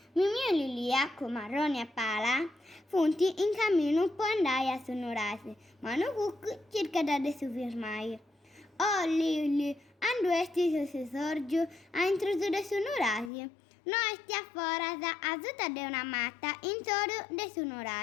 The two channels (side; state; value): right; drops out; at 13.3 s